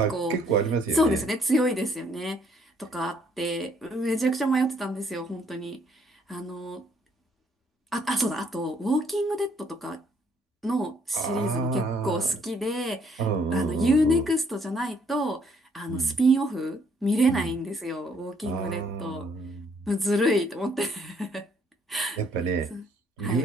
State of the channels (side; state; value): both; normal; correlation 0.66